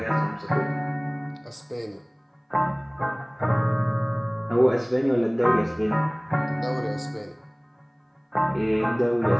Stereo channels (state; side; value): identical; both; correlation 1.00